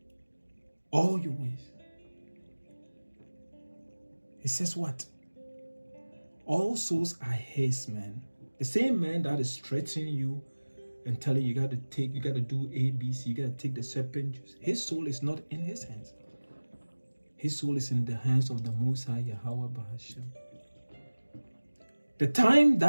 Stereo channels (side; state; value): both; inverted; correlation -1.00